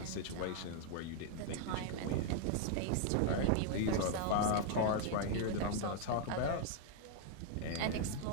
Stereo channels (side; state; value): both; different; correlation 0.00